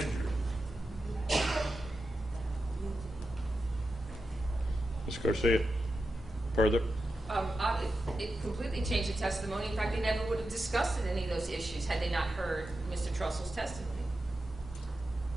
jury. Ms. Garcia, further? It completely changed the testimony. In fact, they never would have discussed any of those issues had they not heard Mr. Trussell's testimony.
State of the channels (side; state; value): both; normal; correlation 0.90